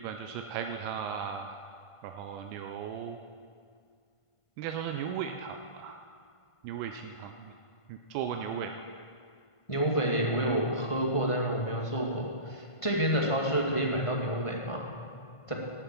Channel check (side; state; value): right; late; 1.5 ms